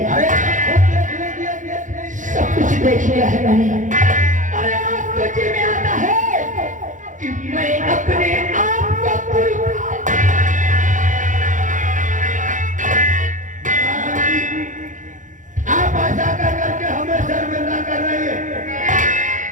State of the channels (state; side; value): late; left; 0.37 ms